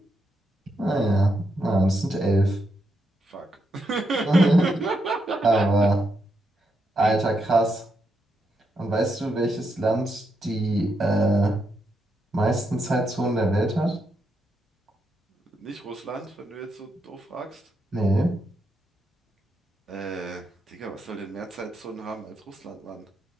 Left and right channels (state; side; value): normal; both; correlation 0.81